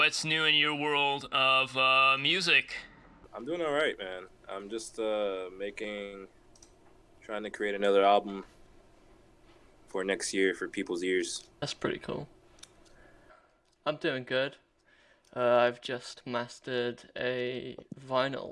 new in your world of music? I'm doing all right, man. I'm just trying to create another album for next year for people's ears. That's pretty cool. I'm doing good. I've just mastered a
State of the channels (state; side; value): identical; both; correlation 1.00